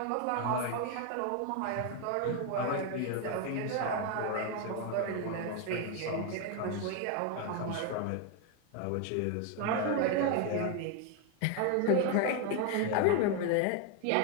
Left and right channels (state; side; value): different; both; correlation 0.01